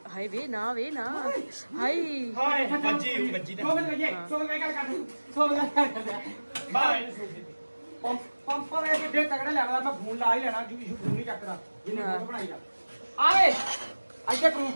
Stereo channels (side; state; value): both; inverted; correlation -1.00